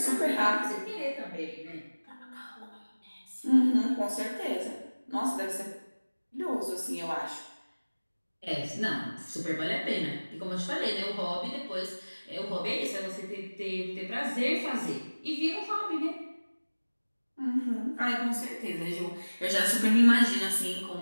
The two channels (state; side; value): inverted; both; correlation -1.00